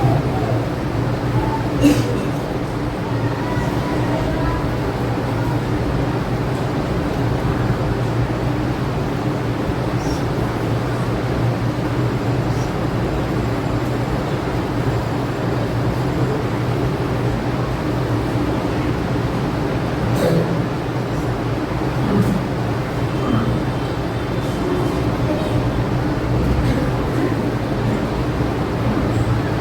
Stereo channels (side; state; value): both; identical; correlation 1.00